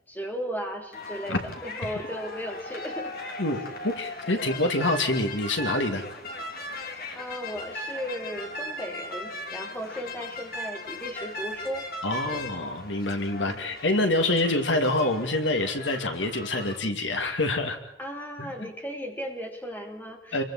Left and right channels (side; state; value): both; normal; correlation 0.19